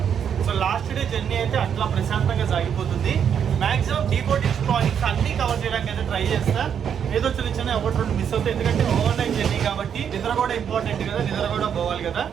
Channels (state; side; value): quieter; left; 8.1 dB